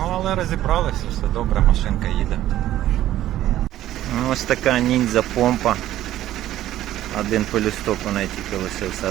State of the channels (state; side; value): quieter; left; 13.4 dB